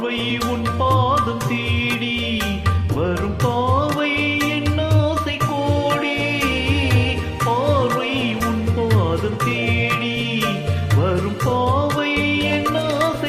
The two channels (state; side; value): identical; both; correlation 1.00